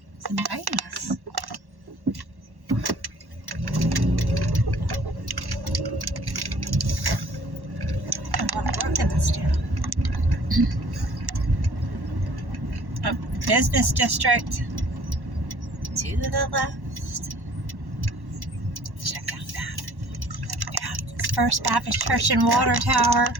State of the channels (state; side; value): late; left; 1.1 ms